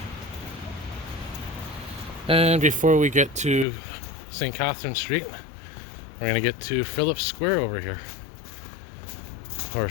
And before we get to St. Catherine Street, we're gonna get to Phillips Square over here, or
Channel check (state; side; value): drops out; right; at 3.7 s